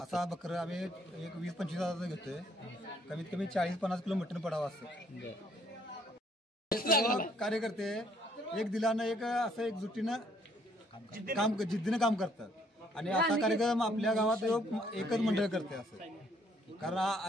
असा बकरं आम्ही एक 20-25 हजाराचा घेतोय. कमीत कमी 40-50 किलो मटण पडावं असं. कार्यकर्ते एक दिलानं एक असं एक जुटीनं जिद्दीनं काम करतात. आणि असा कार्यक्रम आपल्या गावात एकच मंडळ करते असं.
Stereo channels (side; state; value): both; normal; correlation 0.65